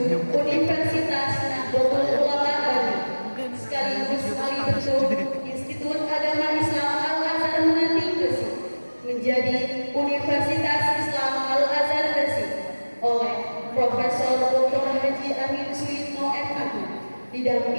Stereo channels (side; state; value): both; inverted; correlation -1.00